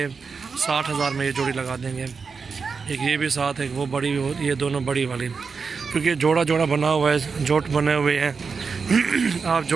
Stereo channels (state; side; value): quieter; left; 5.2 dB